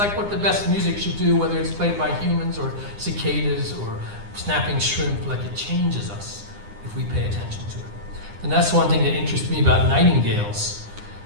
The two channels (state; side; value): late; left; 9.9 ms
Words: what the best music should do, whether it's played by humans or cicadas or snapping shrimp. Like, it changes us if we pay attention to it. And that's one thing that interests me about nightingales,